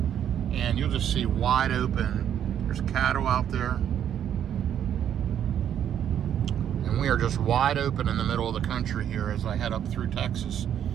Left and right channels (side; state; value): left; quieter; 9.7 dB